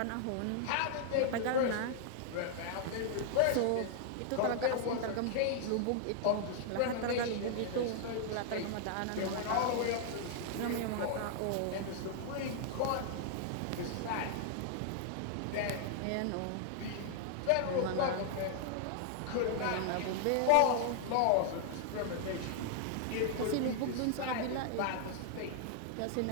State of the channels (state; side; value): different; both; correlation -0.01